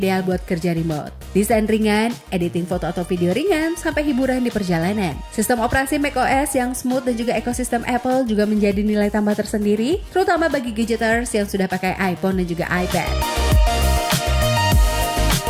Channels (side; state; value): both; identical; correlation 1.00